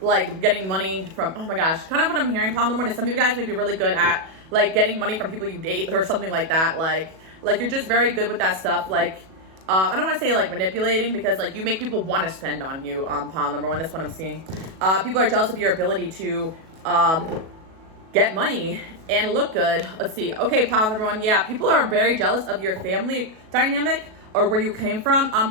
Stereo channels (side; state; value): left; late; 37 ms